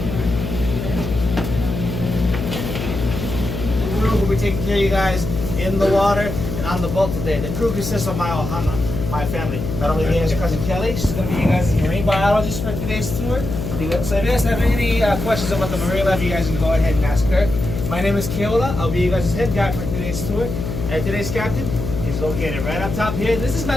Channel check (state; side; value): noise; left; hum, 5 dB below the sound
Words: crew will be taking care of you guys in the water and on the boat today. The crew consists of my ohana, my family. Not only me as your cousin Kelly, she's going to be you guys' marine biologist for today's tour. So if you guys have any questions about the marine life, you guys can go ahead and ask her. My name is Keola. I'll be you guys' head guide for today's tour. And today's captain is located right up top here. This is